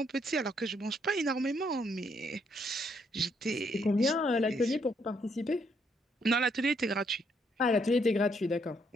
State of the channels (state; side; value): normal; both; correlation 0.72